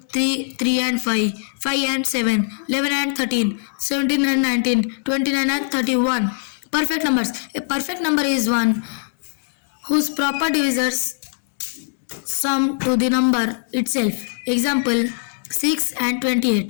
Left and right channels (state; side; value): silent; right; digital silence